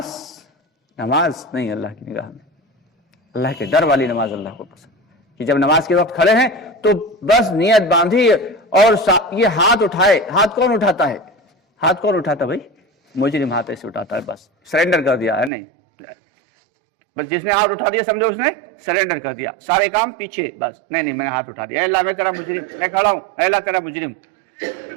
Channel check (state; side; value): drops out; left; at 15.5 s